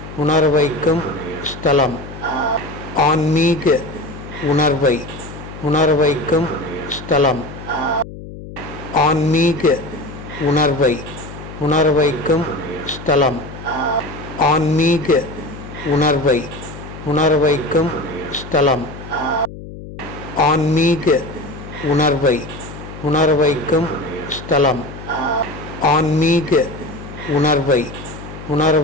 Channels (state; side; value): noise; left; hum, 13 dB below the sound